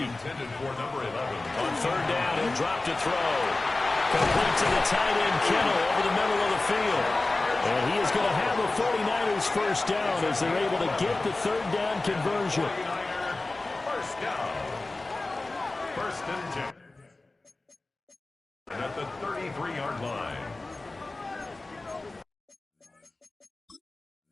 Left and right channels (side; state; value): right; quieter; 3.1 dB